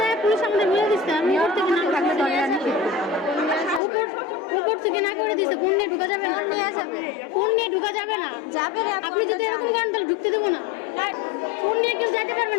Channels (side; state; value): right; drops out; at 3.8 s